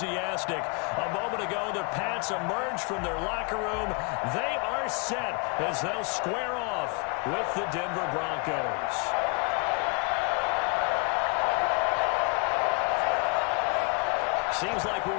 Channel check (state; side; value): quieter; right; 34.3 dB